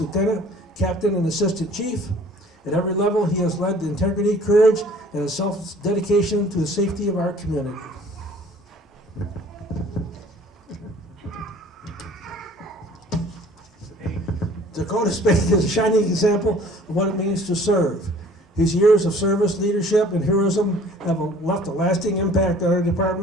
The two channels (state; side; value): normal; both; correlation 0.52